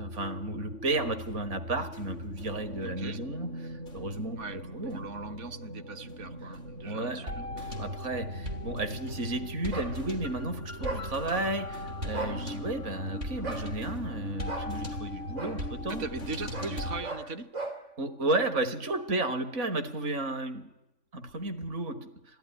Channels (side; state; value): left; late; 3.5 ms